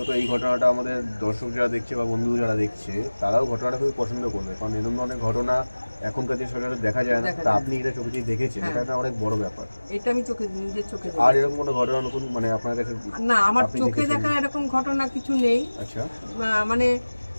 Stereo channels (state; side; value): inverted; both; correlation -1.00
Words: এই ঘটনাটা আমাদের দর্শক যারা দেখছে বা বন্ধু যারা দেখছে তারাও ঘটনাটা খুবই পছন্দ করবে, কারণ এরকম অনেক ঘটনা এখনকার যে সচরাচর দেখা যায় না। তা আপনি এটা চোখে দিয়ে দেখেছেন, এটা অনেক বড় ব্যাপার। এটা আমি নিজের চোখে। আর এরকম কোনো ঘটনা নতুন মানে আপনার কাছে? না, আমার চোখে দেখা এরকম ঘটনা কিছু নেই। আচ্ছা, মানে